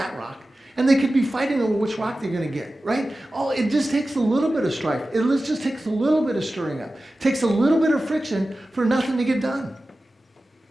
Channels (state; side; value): normal; both; correlation 0.95